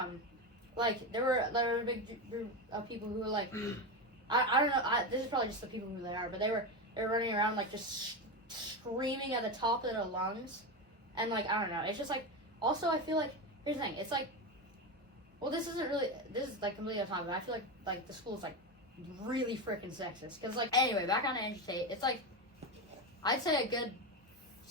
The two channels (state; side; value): normal; both; correlation 0.17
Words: like there were a big group of people who were like, I don't know, this is probably just the people who they are, but they were running around like just screaming at the top of their lungs. And, like, I don't know. It's just, like, also I feel like, here's the thing. It's, like, well, this is, like, completely on topic, but I feel like, the school is, like, really freaking sexist. Because, like, anyway, back on Andrew Tate, it's, like, I'd say a good